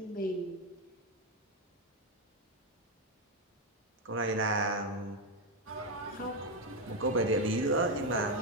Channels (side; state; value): both; normal; correlation 0.07